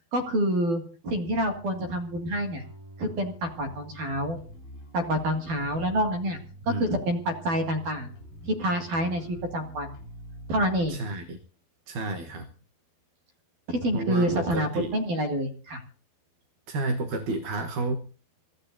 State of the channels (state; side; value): late; left; 12 ms